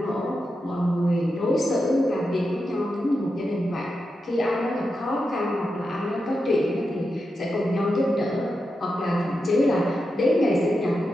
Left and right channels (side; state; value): both; normal; correlation 0.88